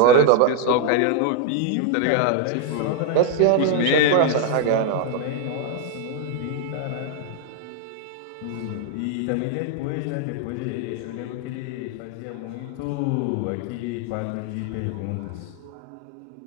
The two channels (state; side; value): different; both; correlation 0.00